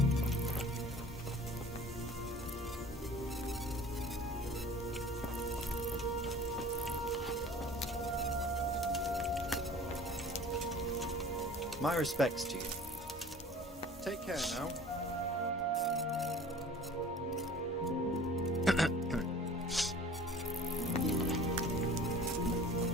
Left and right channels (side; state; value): both; normal; correlation 0.45